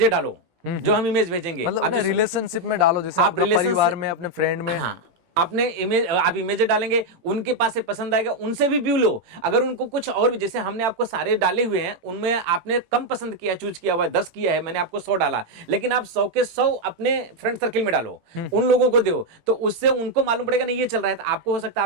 डालो जो हम इमेज भेजेंगे। मतलब अपने रिलेशनशिप में डालो, जैसे आप परिवार में, अपने फ्रेंड में। हाँ, आपने इमेज, आप इमेज डालेंगे, उनके पास से पसंद आएगा, उनसे भी व्यू लो। अगर उनको कुछ और भी, जैसे हमने आपको सारे डाले हुए हैं, उनमें आपने कम पसंद किया, चूज किया हुआ है, 10 किया है, मैंने आपको 100 डाला, लेकिन आप 100 के 100 अपने फ्रेंड सर्किल में डालो, उन लोगों को दो, तो उससे उनको मालूम पड़ेगा नहीं ये चल रहा है। तो आपको हो सकता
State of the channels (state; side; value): late; left; 18 ms